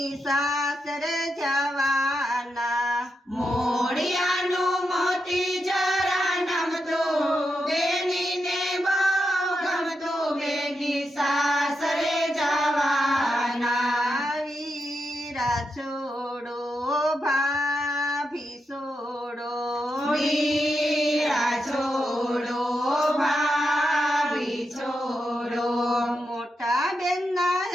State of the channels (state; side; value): normal; both; correlation 0.86